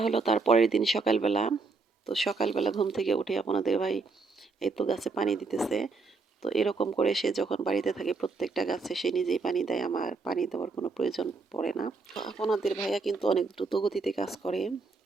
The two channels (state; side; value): quieter; left; 4.1 dB